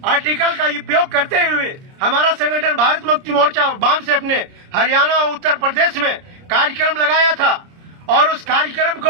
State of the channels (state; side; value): late; left; 30 ms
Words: आर्टिकल का उपयोग करते हुए हमारा संगठन भारत मुक्ति मोर्चा वामसेफ ने हरियाणा और उत्तर प्रदेश में कार्यक्रम लगाया था और उस कार्यक्रम